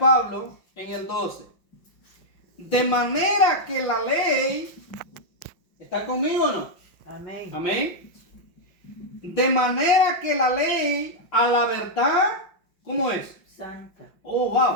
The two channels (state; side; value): late; right; 5.5 ms